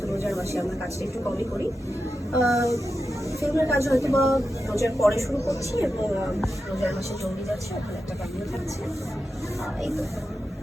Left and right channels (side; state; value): both; normal; correlation 0.90